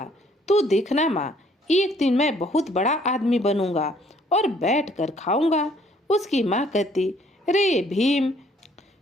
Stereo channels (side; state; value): both; normal; correlation 0.62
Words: तू देखना माँ, एक दिन मैं बहुत बड़ा आदमी बनूंगा और बैठ कर खाऊंगा। उसकी माँ कहती, रे भीम,